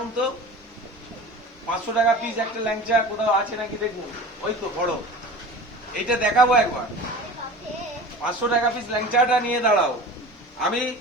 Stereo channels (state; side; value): normal; both; correlation 0.37